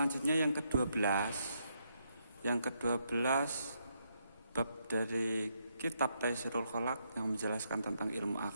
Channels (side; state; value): both; inverted; correlation -0.77